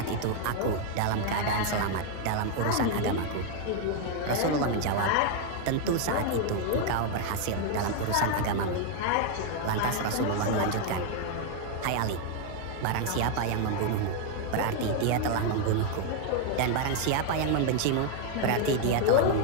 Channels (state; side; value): different; both; correlation 0.01